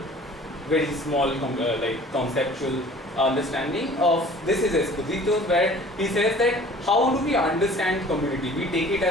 very small conceptual understanding of this is Esposito, where he says that how do we understand community? We take it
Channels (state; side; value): normal; both; correlation 0.48